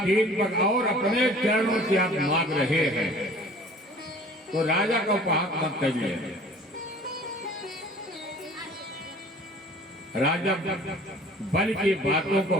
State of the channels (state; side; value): normal; both; correlation 0.48